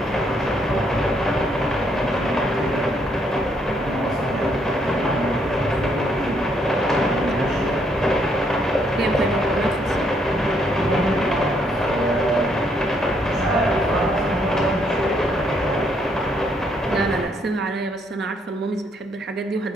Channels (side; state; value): both; normal; correlation 0.72